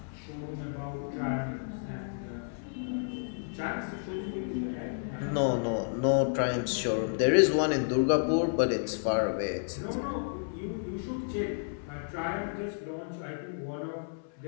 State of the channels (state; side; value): silent; right; 57 dB below the other